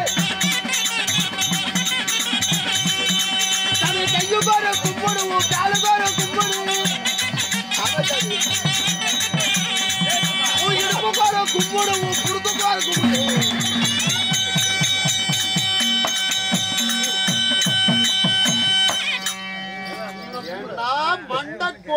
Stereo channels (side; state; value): both; identical; correlation 1.00